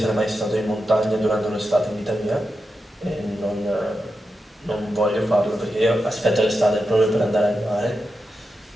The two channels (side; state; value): both; normal; correlation 0.89